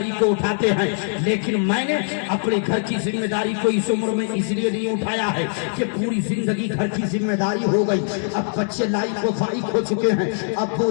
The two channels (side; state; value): right; silent; digital silence